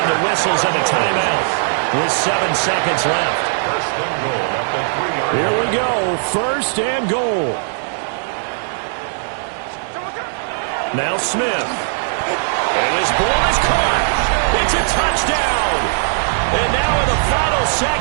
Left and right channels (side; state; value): left; silent; digital silence